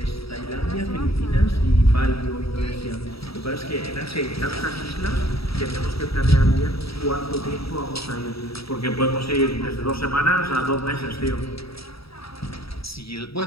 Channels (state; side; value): late; right; 0.76 ms